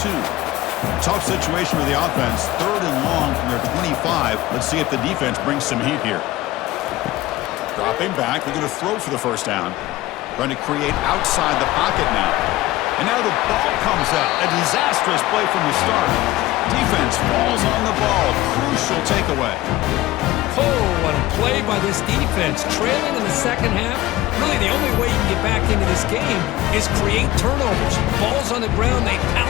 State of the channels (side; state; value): right; quieter; 17.0 dB